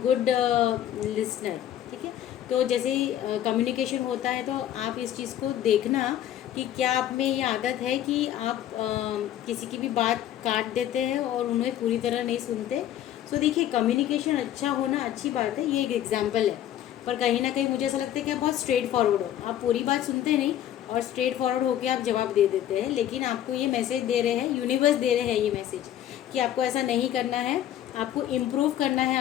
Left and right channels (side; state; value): right; quieter; 11.6 dB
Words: good listener. ठीक है, तो जैसे ही कम्युनिकेशन होता है तो आप इस चीज़ को देखना कि क्या आप में ये आदत है कि आप किसी की भी बात काट देते हैं और उन्हें पूरी तरह नहीं सुनते। सो देखिए, कम्युनिकेशन अच्छा होना अच्छी बात है, ये एक एग्जाम्पल है, पर कहीं ना कहीं मुझे ऐसा लगता है कि आप बहुत स्ट्रेट फॉरवर्ड हो। आप पूरी बात सुनते नहीं और स्ट्रेट फॉरवर्ड होकर आप जवाब दे देते हैं, लेकिन आपको ये मैसेज दे रहे हैं, यूनिवर्स दे रहे हैं ये मैसेज कि आपको ऐसा नहीं करना है। आपको इम्प्रूव करना है